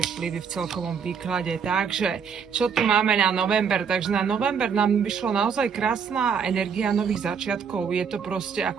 vplyvy v celkovom výklade. Takže, čo tu máme na november? Takže na november nám vyšla naozaj krásna energia nových začiatkov. Je to proste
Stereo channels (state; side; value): quieter; left; 6.6 dB